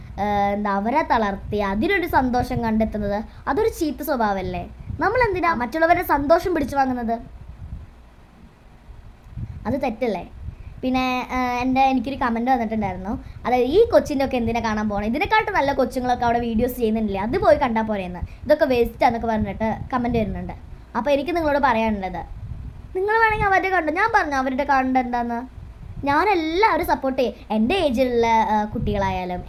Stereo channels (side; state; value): both; identical; correlation 1.00